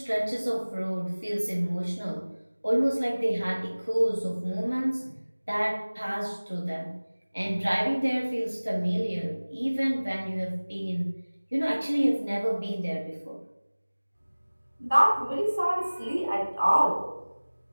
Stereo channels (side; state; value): both; inverted; correlation -1.00